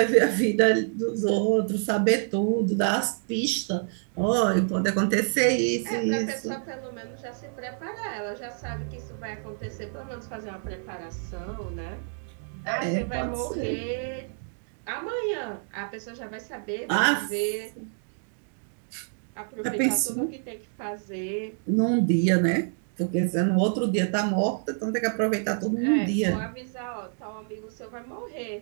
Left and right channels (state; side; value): silent; left; digital silence